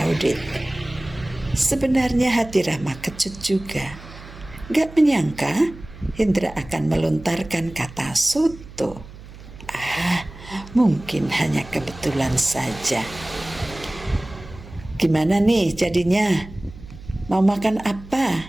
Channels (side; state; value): right; noise; hum, 17 dB below the sound